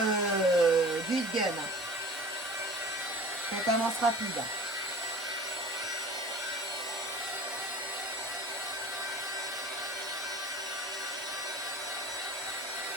heat gun. Ça commence rapide.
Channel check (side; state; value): both; normal; correlation 0.41